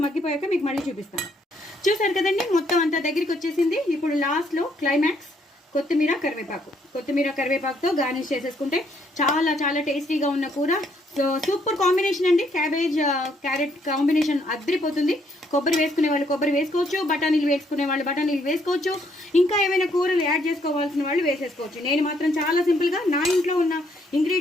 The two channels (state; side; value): normal; both; correlation 0.70